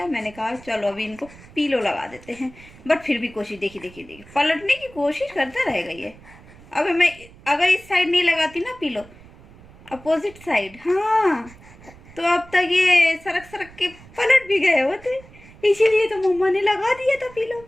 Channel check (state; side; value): noise; right; rumble, 22 dB below the sound